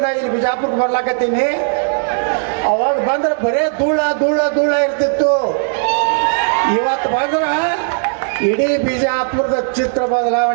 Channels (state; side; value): silent; left; digital silence